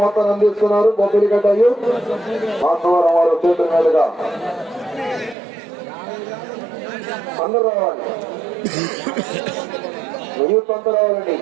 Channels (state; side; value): drops out; left; at 5.4 s